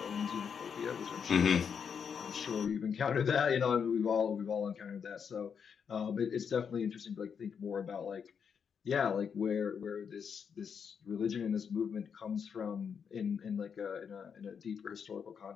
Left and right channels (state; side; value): quieter; right; 6.9 dB